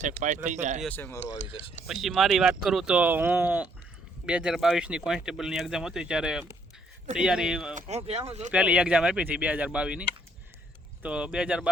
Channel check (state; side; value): normal; both; correlation 0.68